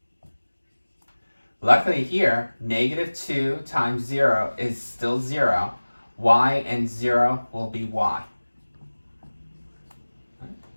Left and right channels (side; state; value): both; inverted; correlation -1.00